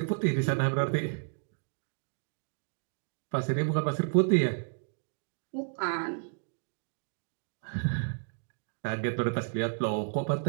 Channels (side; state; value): left; silent; digital silence